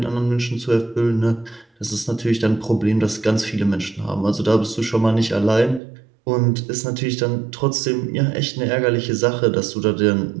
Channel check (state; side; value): drops out; left; at 5.8 s